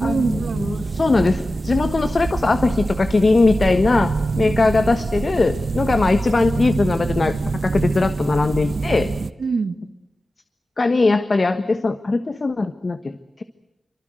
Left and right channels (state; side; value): normal; both; correlation 0.94